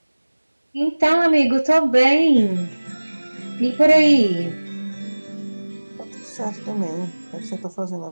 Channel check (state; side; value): inverted; both; correlation -1.00